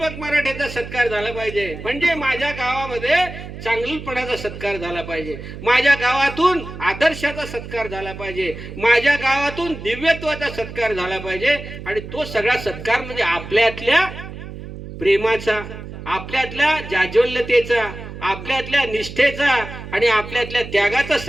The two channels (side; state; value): right; noise; hum, 11 dB below the sound